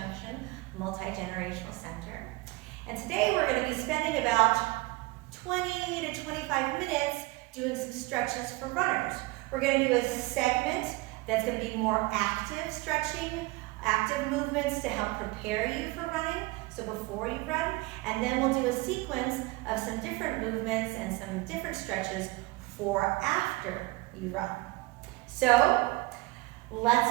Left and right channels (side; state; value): left; quieter; 22.2 dB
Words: Multi-Generational Center. And today we're going to be spending about 20 to 25 minutes doing some stretches for runners. We're going to do a segment that's going to be more active stretching, active movements to help prepare you for running, so before you run, and then we'll do a sequence of some different movements and some different stretches for after you run. So